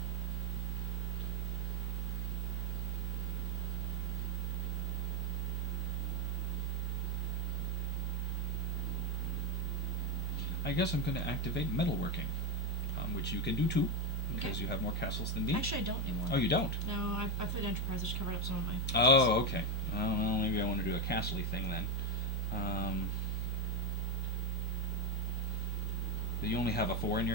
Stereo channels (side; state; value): both; normal; correlation 0.05